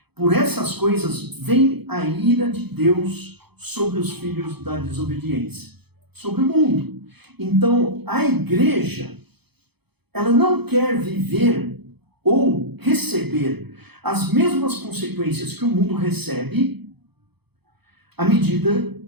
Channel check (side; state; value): left; late; 0.98 ms